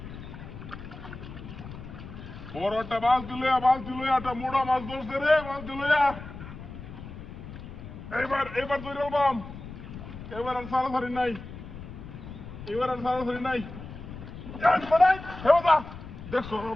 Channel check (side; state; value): left; noise; rumble, 12 dB below the sound